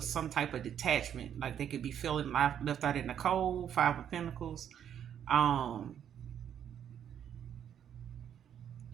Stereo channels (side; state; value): left; quieter; 9.3 dB